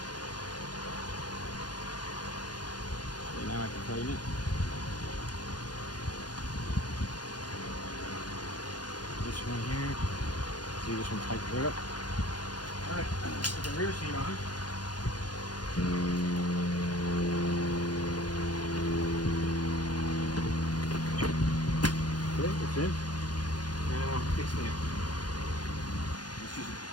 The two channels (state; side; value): late; right; 0.69 ms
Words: Okay, now I can tighten it. This one here. See, this one tightens right up. Alright, put the rear seat on. Okay, it's in. Now, kickstand. Let's just